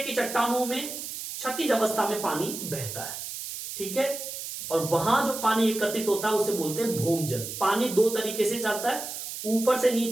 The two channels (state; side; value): noise; right; hiss, 7 dB below the sound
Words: चट्टानों में क्षैतिज अवस्था में पानी बहता है, ठीक है। और वहां जो पानी एकत्रित होता है उसे बोलते हैं भौमजल। पानी दो तरीके से चलता है, ऊपर से